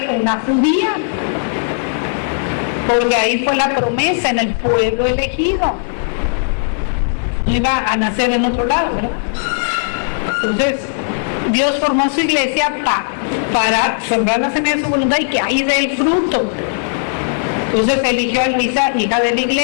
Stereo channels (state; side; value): silent; right; digital silence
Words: una judía. Porque ahí fue la promesa, en el pueblo elegido. No iba a nacer en otro lado, ¿verdad? Entonces, Dios formó su iglesia para sembrar la semilla de su voluntad y que ahí dé el fruto. Entonces eligió a Luisa, hija de la